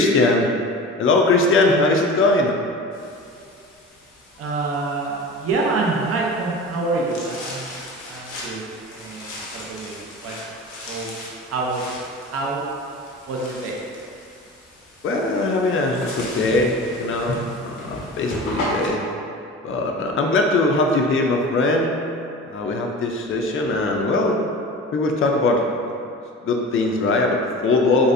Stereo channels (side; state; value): both; normal; correlation 0.34